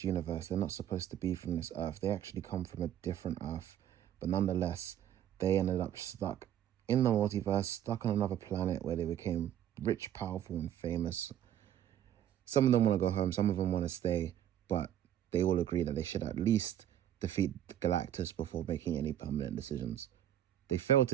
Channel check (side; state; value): left; quieter; 10.9 dB